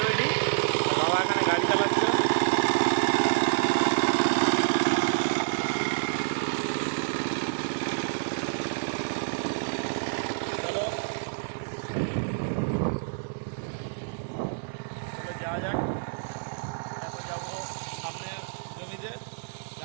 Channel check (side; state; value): left; silent; digital silence